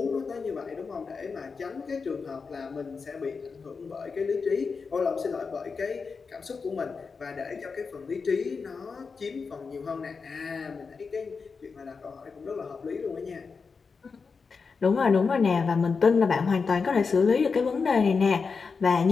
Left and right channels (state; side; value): quieter; right; 5.0 dB